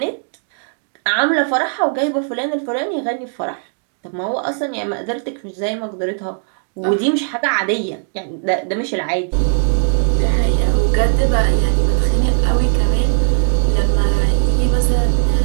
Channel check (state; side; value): silent; left; 68 dB below the other